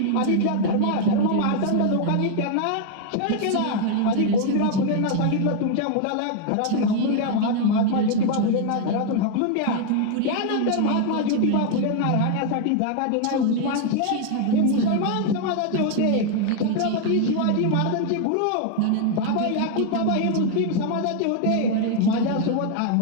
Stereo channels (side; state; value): both; different; correlation 0.00